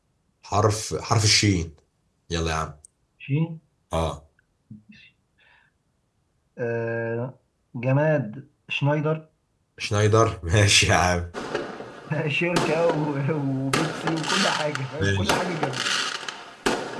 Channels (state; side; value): identical; both; correlation 1.00